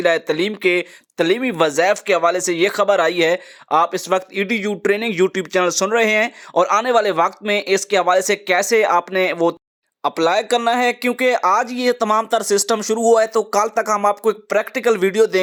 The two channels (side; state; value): both; identical; correlation 1.00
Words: है तलीम के तलीमी वज़ाइफ के हवाले से ये खबर आई है। आप इस वक्त EDU ट्रेनिंग यूट्यूब चैनल सुन रहे हैं और आने वाले वक्त में इसके हवाले से कैसे आपने वो अप्लाई करना है, क्योंकि आज ये तमाम तर सिस्टम शुरू हुआ है तो कल तक हम आपको एक प्रैक्टिकल वीडियो